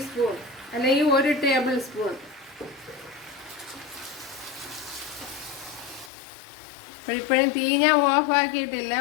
അല്ലെങ്കിൽ 1 ടേബിൾ സ്പൂൺ. ഇപ്പോഴും തീ ഞാൻ ഓഫ് ആക്കിയിട്ടില്ല,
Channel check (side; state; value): right; drops out; at 6.1 s